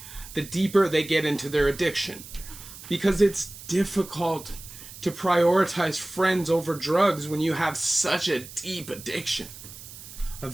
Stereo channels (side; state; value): right; noise; hiss, 15 dB below the sound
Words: the deeper they get into their addiction, because it's difficult to prioritize friends over drugs when you have such a deep addiction.